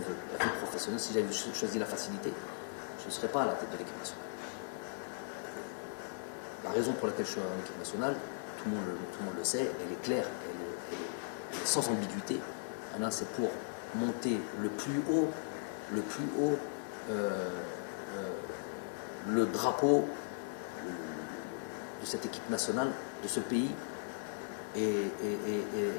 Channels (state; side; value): silent; right; digital silence